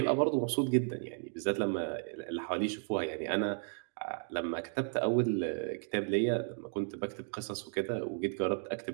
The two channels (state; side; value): silent; left; 55 dB below the other